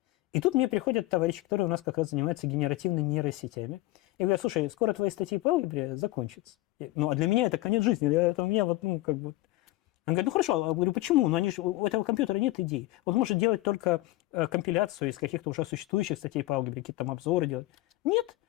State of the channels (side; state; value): right; quieter; 18.6 dB